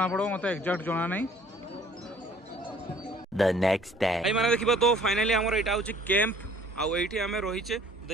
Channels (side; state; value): both; normal; correlation 0.55